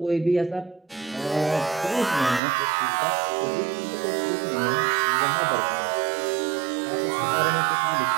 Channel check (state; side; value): drops out; left; at 2.4 s